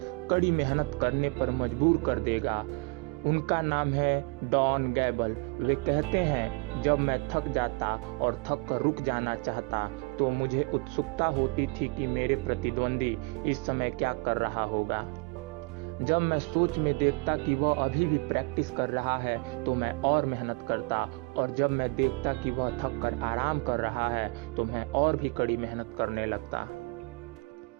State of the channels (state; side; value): quieter; left; 28.9 dB